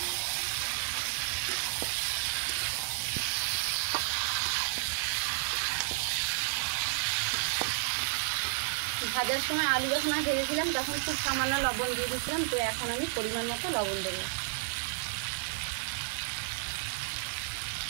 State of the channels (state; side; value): silent; left; digital silence